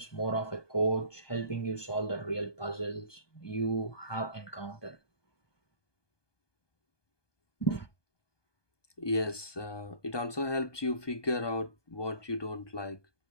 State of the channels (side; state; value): right; late; 1.2 ms